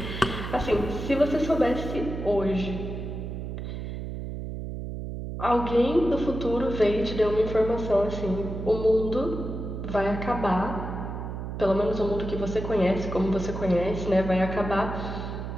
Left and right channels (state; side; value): noise; right; hum, 6 dB below the sound